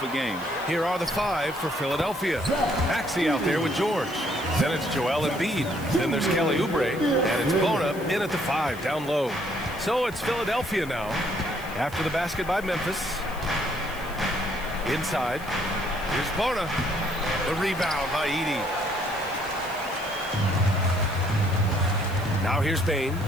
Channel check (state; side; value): noise; left; hiss, 19 dB below the sound